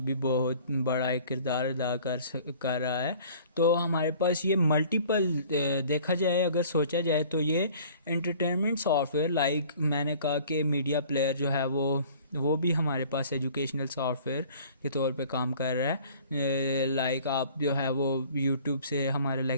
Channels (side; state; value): both; inverted; correlation -0.50